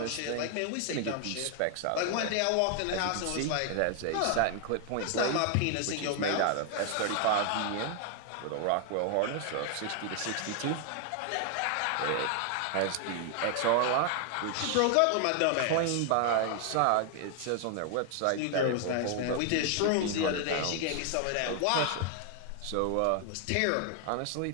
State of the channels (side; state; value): both; different; correlation 0.00